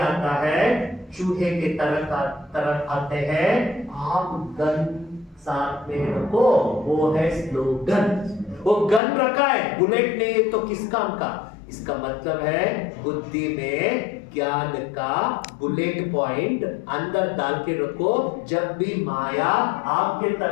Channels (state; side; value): drops out; right; at 9.0 s